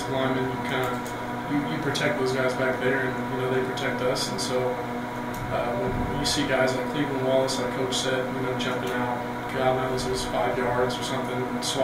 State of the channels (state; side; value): identical; both; correlation 1.00